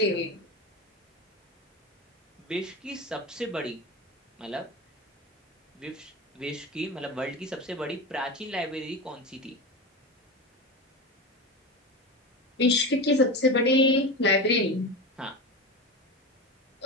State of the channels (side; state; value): both; normal; correlation 0.23